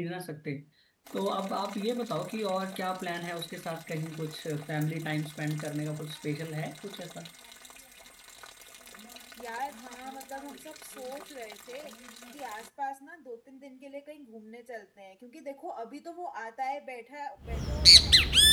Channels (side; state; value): both; identical; correlation 1.00